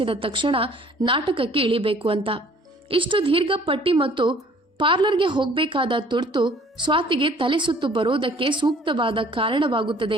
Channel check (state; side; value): normal; both; correlation 0.55